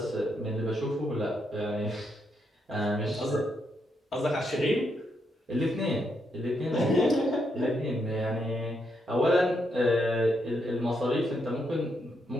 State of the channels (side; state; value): both; normal; correlation 0.79